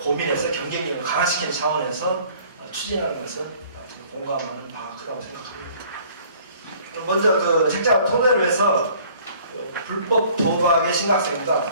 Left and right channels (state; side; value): inverted; both; correlation -0.54